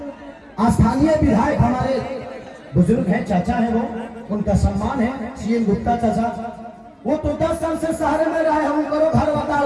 स्थानीय विधायक हमारे बुजुर्ग हैं, चाचा हैं, वो उनका सम्मान है, सीएम गुप्ता चाचा। वो तो 10 साल से शहर में रहे, हम करो घर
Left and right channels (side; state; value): both; identical; correlation 1.00